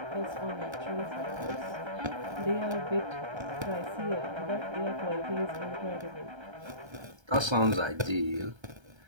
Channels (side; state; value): left; late; 1.3 ms